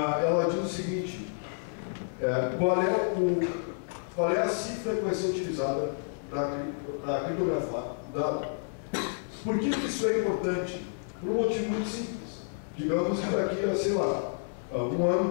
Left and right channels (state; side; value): silent; right; 58 dB below the other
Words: diz o seguinte: qual é a cifra que vai ser utilizada para criptografar o dado? Por que isso é importante? Por um motivo muito simples. Digamos que daqui a, sei lá, 1